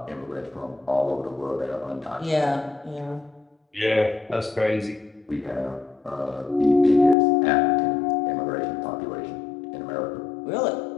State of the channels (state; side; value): drops out; right; at 7.2 s